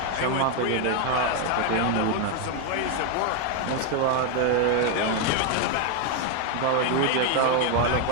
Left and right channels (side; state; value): both; different; correlation 0.01